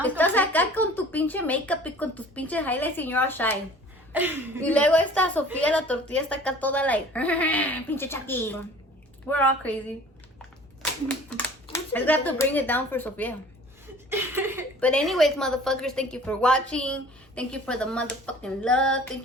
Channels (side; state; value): both; normal; correlation 0.47